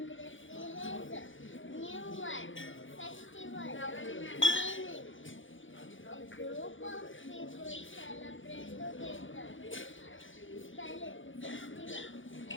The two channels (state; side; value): late; right; 0.56 ms